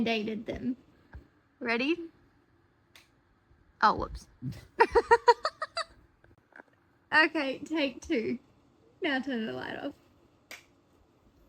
them. Ready? Oh, whoops. Okay, take two. Now turn the light off.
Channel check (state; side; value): identical; both; correlation 1.00